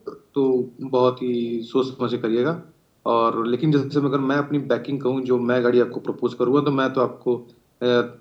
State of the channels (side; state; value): both; identical; correlation 1.00